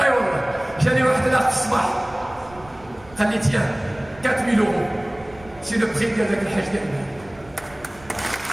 voilà. J'allais voir de l'art Sbah. Allez, tiens, 4 000 €. C'est le prix avec le Hajj d'Ahmed.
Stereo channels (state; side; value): noise; right; rumble, 23 dB below the sound